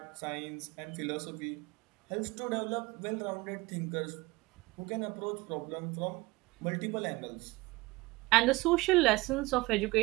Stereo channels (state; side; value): quieter; left; 22.0 dB